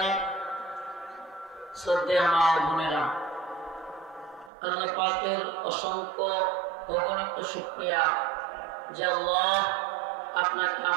শ্রদ্ধেয় মা বোনেরা, আল্লাহ পাকের অসংখ্য অগণিত শুকরিয়া যে আল্লাহ আপনাকে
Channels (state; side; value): drops out; left; at 4.5 s